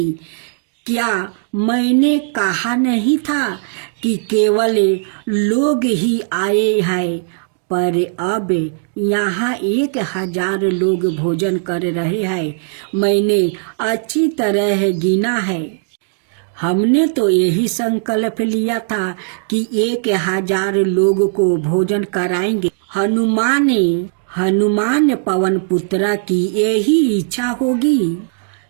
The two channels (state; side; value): silent; left; digital silence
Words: क्या मैंने कहा नहीं था कि केवल लोग ही आए हैं? पर अब यहाँ 1000 लोग भोजन कर रहे हैं। मैंने अच्छी तरह गिना है। हमने तो यही संकल्प लिया था कि 1000 लोग को भोजन कराएंगे। हनुमान पवन पुत्रा की यही इच्छा होगी।